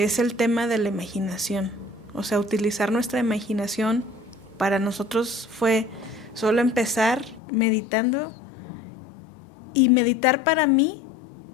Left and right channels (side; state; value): right; drops out; at 7.4 s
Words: es el tema de la imaginación. O sea, utilizar nuestra imaginación. Para nosotros fue solo empezar meditando, y meditar para mí,